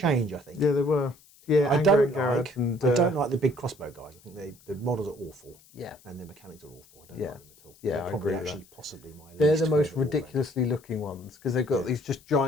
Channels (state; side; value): noise; left; hiss, 27 dB below the sound